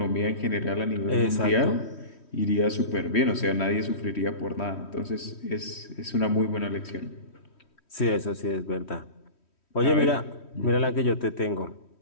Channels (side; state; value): right; late; 3.1 ms